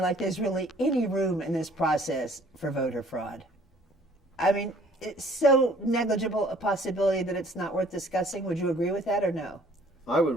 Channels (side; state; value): both; normal; correlation 0.56